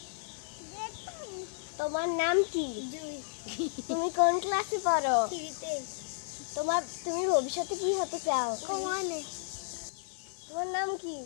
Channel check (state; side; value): silent; right; digital silence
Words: তোমার নাম কি? জুই তুমি কোন ক্লাসে পড়ো? শিশুতে তুমি ভবিষ্যতে কি হতে চাও? কমানে তোমার নাম কি?